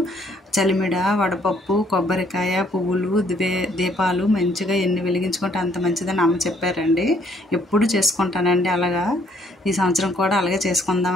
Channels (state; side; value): normal; both; correlation 0.65